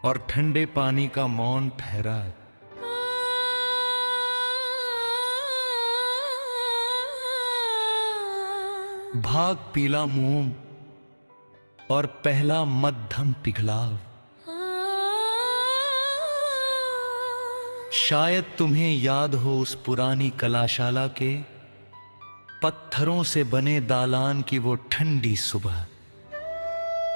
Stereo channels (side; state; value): both; inverted; correlation -1.00